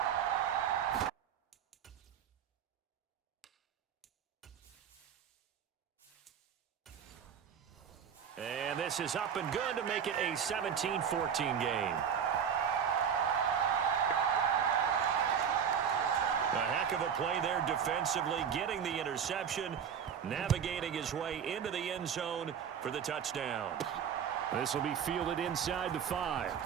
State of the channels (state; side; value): quieter; left; 7.8 dB